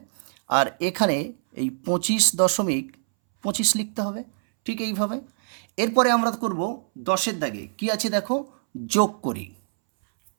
আর এখানে এই 25.25 লিখতে হবে, ঠিক এইভাবে। এরপরে আমরা করব 10-এর দাগে কি আছে দেখো যোগ করি।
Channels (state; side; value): silent; left; 62 dB below the other